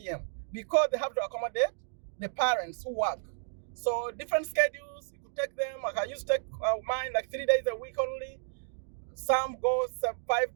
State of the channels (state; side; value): silent; left; digital silence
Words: because they have to accommodate the parents who work. So different schedules, you could take them. Like I used to take mine like 3 days a week only. Some go 5